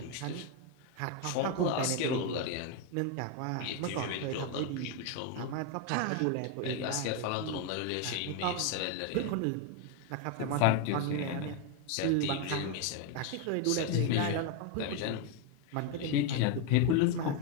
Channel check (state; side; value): different; both; correlation 0.01